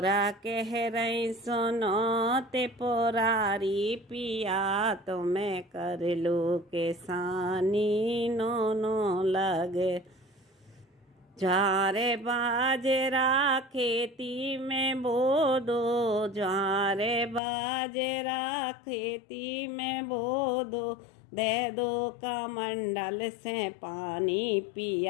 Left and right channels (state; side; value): drops out; right; at 17.4 s